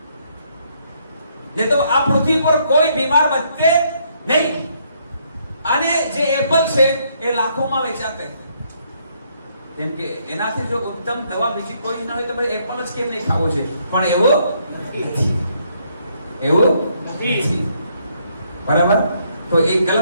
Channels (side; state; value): both; inverted; correlation -0.71